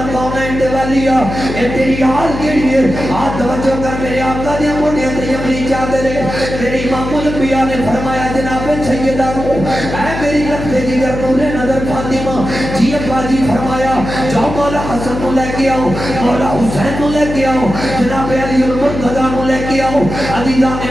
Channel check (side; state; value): left; noise; hum, 7 dB below the sound